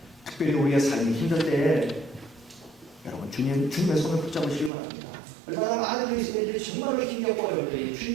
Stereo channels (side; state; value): left; drops out; at 4.7 s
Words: 특별히 우리의 삶이 힘들 때 여러분, 주님의 손을 붙잡으시기 바랍니다. 얼마나 많은 그리스도인들이 정말로 힘겹고 어려울 때